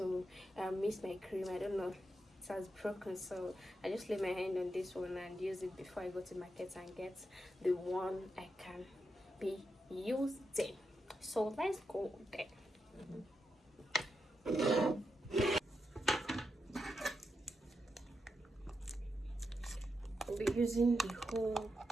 mix my cream, I don't know, it has broken, so I just lay my hand on this one and use it before I go to market and get the one I can be using. So let's go there. I'll be using the whole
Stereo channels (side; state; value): both; normal; correlation 0.86